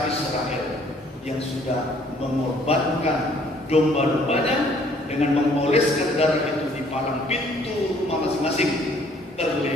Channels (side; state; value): both; normal; correlation 0.61